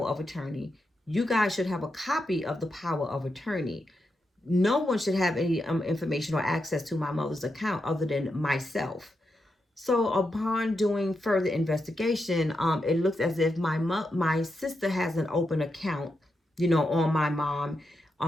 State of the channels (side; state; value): both; normal; correlation 0.86